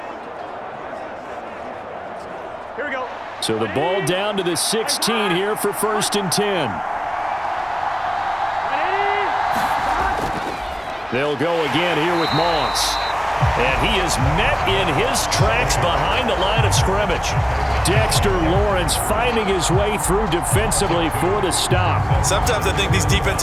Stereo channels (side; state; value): both; identical; correlation 1.00